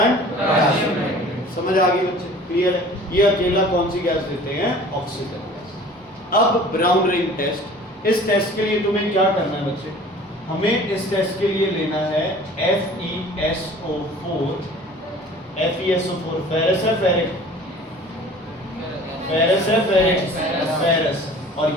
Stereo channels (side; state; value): both; normal; correlation 0.46